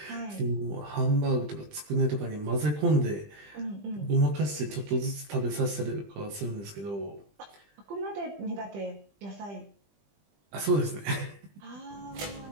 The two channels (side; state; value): left; late; 20 ms